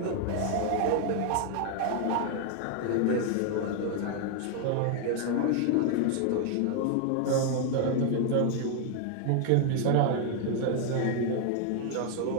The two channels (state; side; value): different; both; correlation 0.00